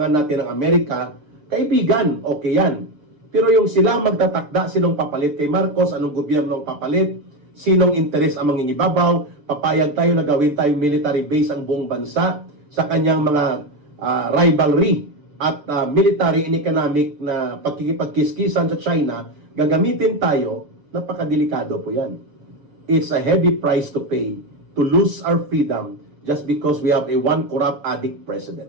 natin ng Amerika, kaibigan, okay yan. Pero yung sila magtatakda, sinong papalit kay Marcos, anong gobyerno ang papalit, sinong interes ang mangingibabaw, papayag tayo na gawin tayong military base ang buong bansa sa kanyang mga rivalry at military and economic na pagkikipagkiskisan sa China, gagamitin tayo, napakadelikado po yan. It's a heavy price to pay to lose our freedom just because we have a one corrupt addict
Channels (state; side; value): late; left; 6.8 ms